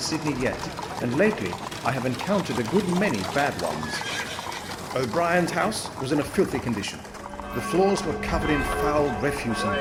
yet, and lately I have encountered a good many bad ones. O'Brien's house was in a filthy condition. The floors were covered in foul refuse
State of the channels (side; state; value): both; identical; correlation 1.00